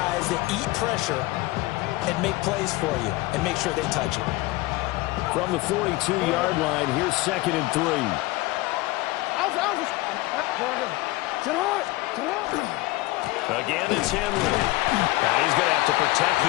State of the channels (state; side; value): quieter; right; 20.2 dB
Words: that eat pressure and make plays for you, and make sure they touch it. From the 42-yard line, here's 2nd and 3. Again, it's Henry. And he's going to have to protect